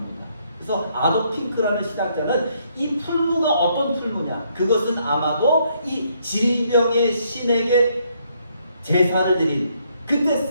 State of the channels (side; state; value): both; inverted; correlation -0.71